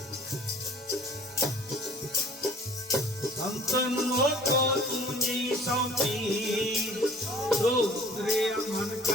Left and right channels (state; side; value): normal; both; correlation 0.51